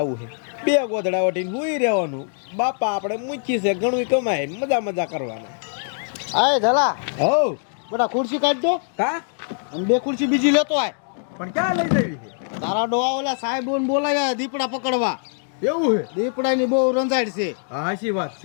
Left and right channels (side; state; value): right; silent; digital silence